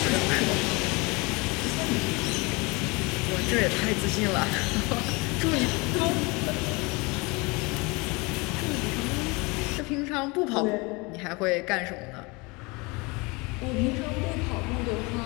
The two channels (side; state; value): right; quieter; 26.7 dB